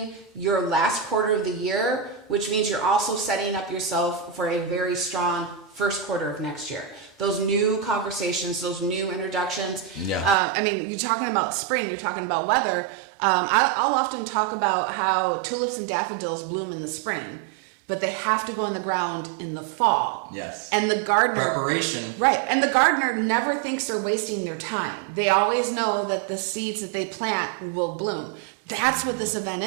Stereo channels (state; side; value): drops out; left; at 10.4 s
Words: your last quarter of the year, which means you're also setting up yourself for a very strong first quarter of next year. Those new conversations, those new introductions. Yeah. I mean, you're talking about spring, you're talking about weather. I'll often talk about how tulips and daffodils bloom in the spring, but they have to go in the ground in the fall. Yes. And the gardener... Preparation. Right. And the gardener never thinks they're wasting their time. They always know that the seeds that they plant will bloom. That's what this event